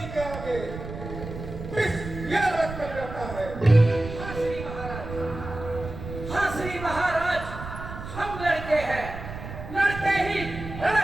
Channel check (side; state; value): right; noise; rumble, 10 dB below the sound